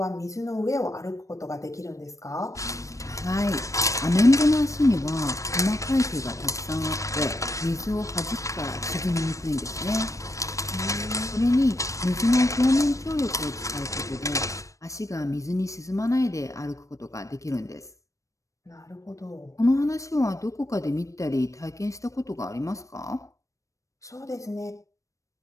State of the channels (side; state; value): right; late; 0.15 ms